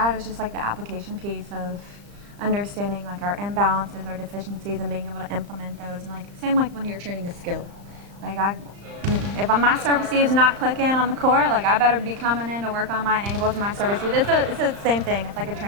is just like the application piece of understanding like our imbalances, our deficiencies, and being able to implement those. And like same like when you're training a skill, like if my service receive's not clicking on the court, like I better be coming in to work on my angles and my service receive. It's the same thing. It's like a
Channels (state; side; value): late; left; 35 ms